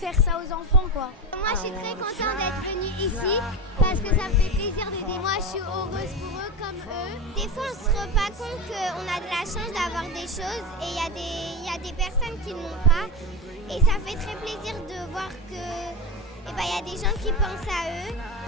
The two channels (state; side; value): normal; both; correlation 0.20